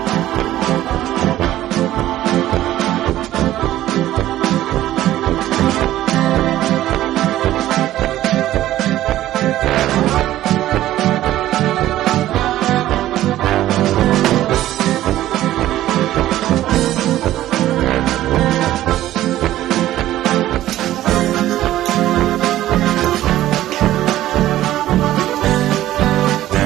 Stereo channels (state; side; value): quieter; left; 14.1 dB